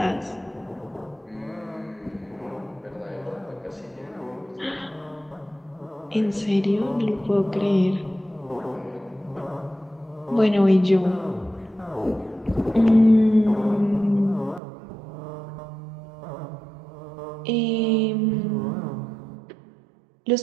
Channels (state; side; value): drops out; left; at 14.6 s